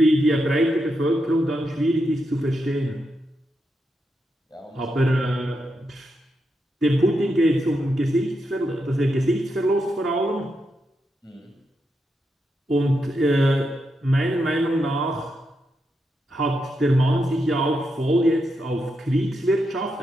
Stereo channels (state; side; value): normal; both; correlation 0.84